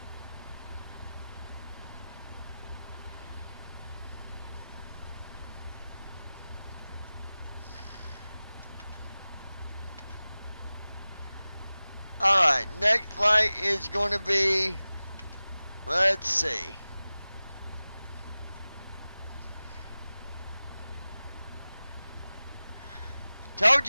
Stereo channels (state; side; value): inverted; both; correlation -0.97